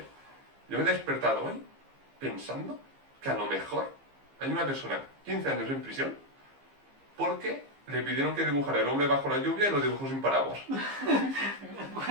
Yo me he despertado hoy pensando que a lo mejor hay una persona 15 años en prisión porque le pidieron que dibujara el hombre bajo la lluvia y lo dibujó sin paraguas.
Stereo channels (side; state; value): left; late; 15 ms